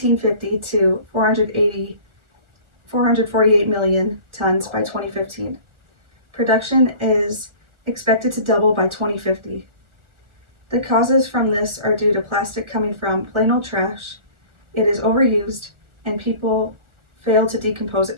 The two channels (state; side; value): late; left; 1.4 ms